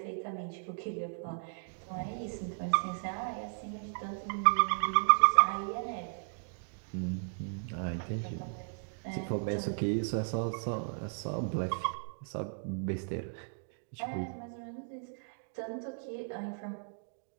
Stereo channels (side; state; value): left; silent; digital silence